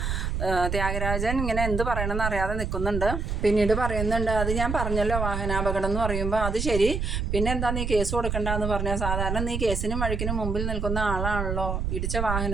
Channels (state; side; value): noise; right; rumble, 2 dB below the sound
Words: ത്യാഗരാജൻ ഇങ്ങനെ എന്ത് പറയണമെന്ന് അറിയാതെ നിൽക്കുന്നുണ്ട്. പിന്നീട് പറയുന്നുണ്ട്, അത് ഞാൻ പറഞ്ഞല്ലോ വാഹനാപകടം എന്ന് പറയുമ്പോൾ അത് ശരി, പിന്നെ എന്താ നീ കേസ് കൊടുക്കണ്ടെന്ന് പറഞ്ഞാൽ, സാധാരണ നീ കേസിനും വഴിക്കിനും മുമ്പിൽ നിൽക്കുന്ന ആളാണല്ലോ, ഇടിച്ച